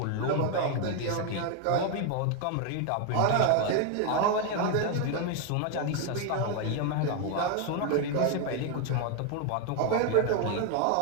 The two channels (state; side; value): different; both; correlation 0.01